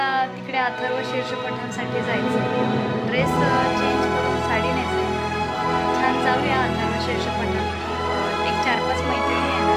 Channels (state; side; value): identical; both; correlation 1.00